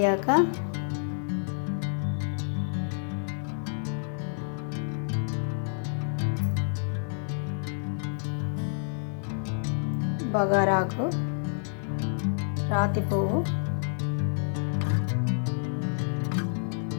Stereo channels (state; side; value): silent; right; 56 dB below the other